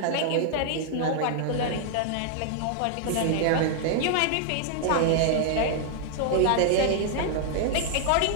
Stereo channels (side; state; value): both; different; correlation -0.01